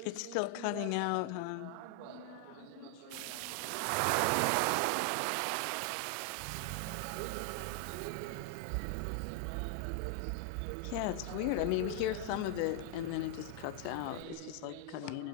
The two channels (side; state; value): both; different; correlation 0.00